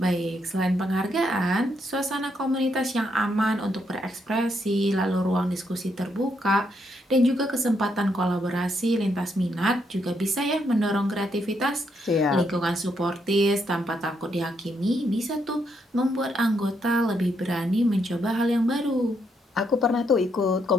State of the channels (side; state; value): both; normal; correlation 0.77